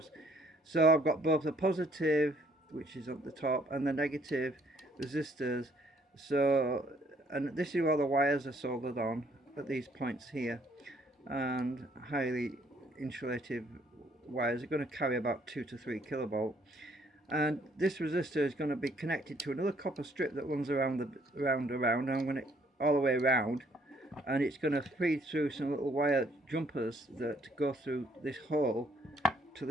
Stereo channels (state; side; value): normal; both; correlation 0.64